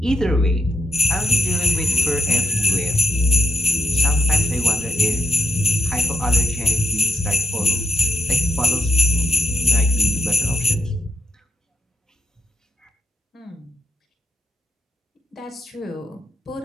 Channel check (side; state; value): both; normal; correlation 0.82